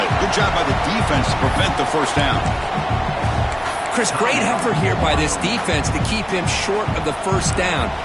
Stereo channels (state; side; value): identical; both; correlation 1.00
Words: Good job by the defense to prevent the 1st down. Chris, great effort here by this defense to keep him short of the 1st down.